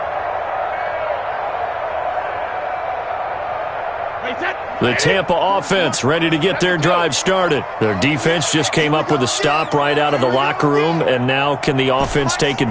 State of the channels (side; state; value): both; identical; correlation 1.00